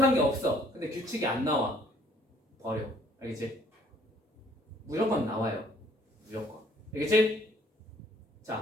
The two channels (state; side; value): normal; both; correlation 0.60